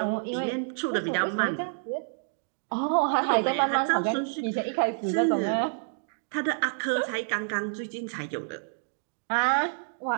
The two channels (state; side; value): silent; left; digital silence